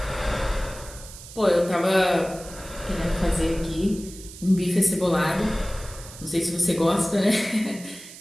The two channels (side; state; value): right; noise; hiss, 16 dB below the sound